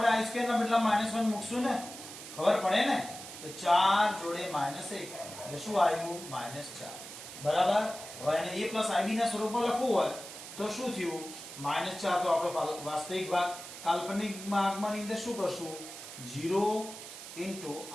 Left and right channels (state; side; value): noise; right; hiss, 12 dB below the sound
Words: i સ્ક્વેર ના બદલા -1 મૂકશું ને ખબર પડે ને તો 4 જોડે -1 એટલે શું આવ્યું -4 બરાબર હવે એને a + ib ના સ્વરૂપમાં લખવું હોય તો શું થયું -4 તો આપણો વાસ્તવિક ભાગ કાલ્પનિક ભાગમાં અંદર શું કરશું 0 * i